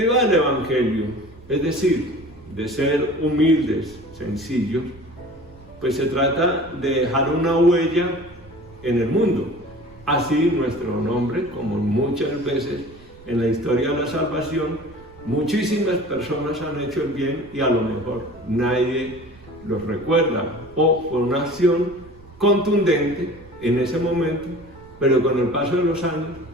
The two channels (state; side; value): noise; right; rumble, 23 dB below the sound